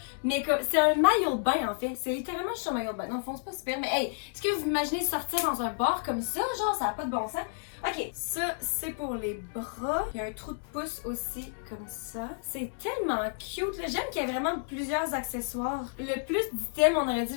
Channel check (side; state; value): right; silent; digital silence